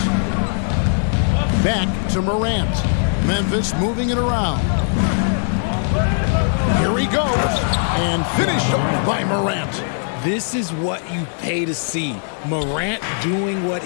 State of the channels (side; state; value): right; silent; 64 dB below the other